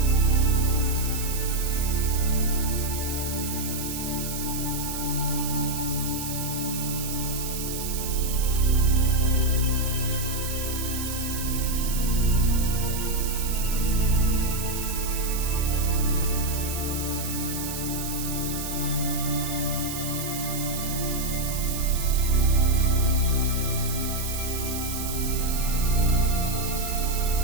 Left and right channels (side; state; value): right; noise; hiss, 6 dB below the sound